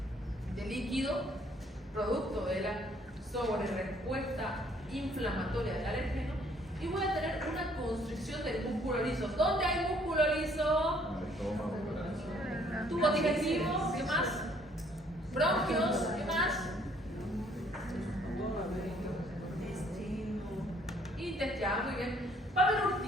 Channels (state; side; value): normal; both; correlation 0.63